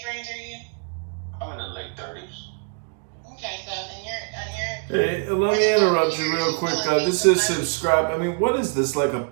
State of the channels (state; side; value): quieter; left; 37.1 dB